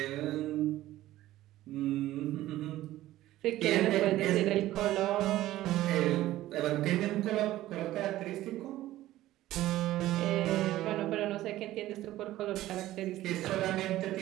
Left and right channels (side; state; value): left; quieter; 15.1 dB